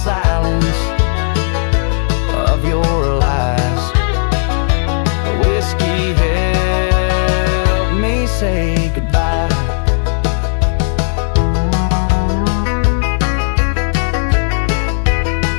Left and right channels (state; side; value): silent; right; digital silence